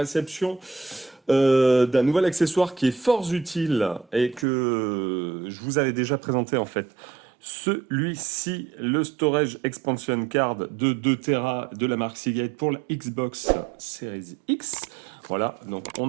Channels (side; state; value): left; drops out; at 4.5 s